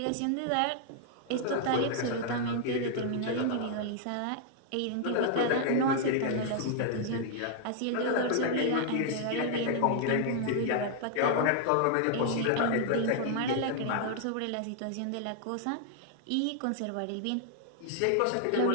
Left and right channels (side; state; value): both; different; correlation -0.01